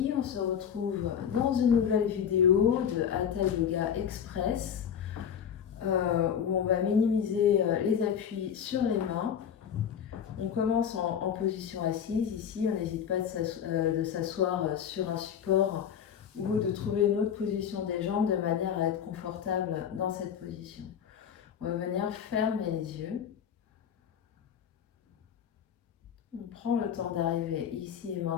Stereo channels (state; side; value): quieter; right; 8.4 dB